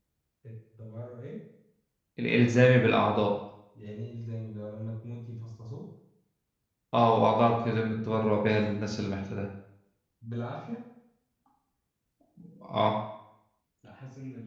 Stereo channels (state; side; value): identical; both; correlation 1.00